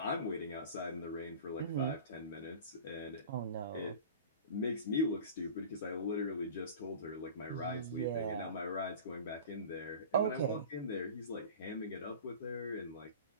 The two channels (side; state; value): both; inverted; correlation -0.37